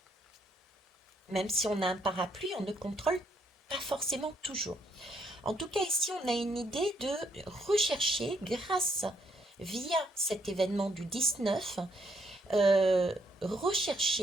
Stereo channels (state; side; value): normal; both; correlation 0.72